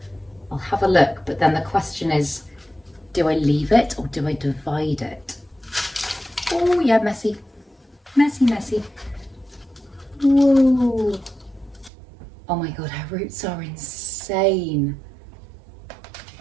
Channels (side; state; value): left; drops out; at 11.9 s